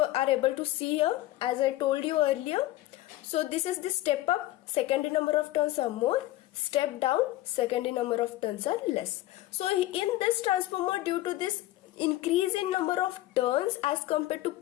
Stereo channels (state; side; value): quieter; right; 16.2 dB